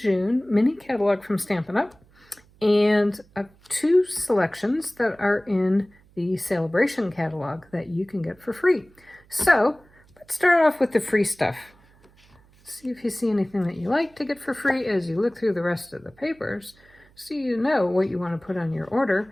mini catalog from Stampin' Up! And two selections that are in the Sale-a-bration catalog that you can get for free. So let's start off with the free stuff. See if you see anything that you like to get for free as you look through the rest of the papers so you know what you want to put on your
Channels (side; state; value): right; noise; hum, 29 dB below the sound